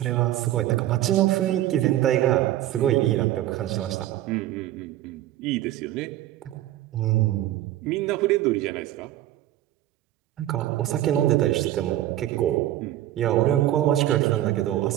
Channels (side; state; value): left; quieter; 13.9 dB